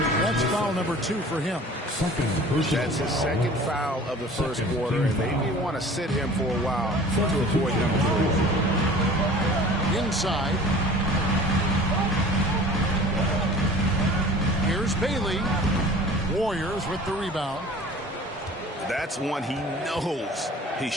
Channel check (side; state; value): both; normal; correlation 0.44